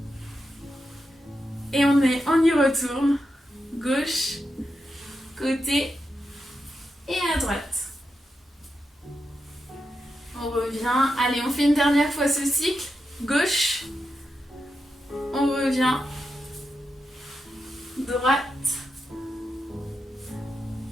Et on y retourne, gauche, côté et à droite. On revient, allez on fait une dernière fois ce cycle, gauche, on revient, droite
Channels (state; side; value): normal; both; correlation 0.87